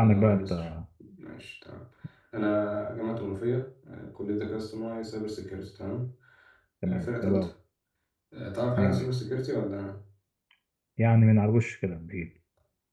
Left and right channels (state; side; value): identical; both; correlation 1.00